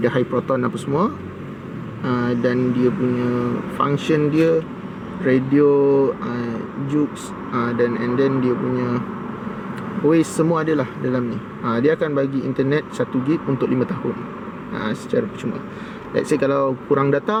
ada high proton apa semua, dan dia punya function dia radio, jukes, dan and then dia punya Waze semua adalah dalam ni. Dia akan bagi internet 1 gig untuk 5 tahun secara percuma. Let's say kalau kurang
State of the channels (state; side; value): identical; both; correlation 1.00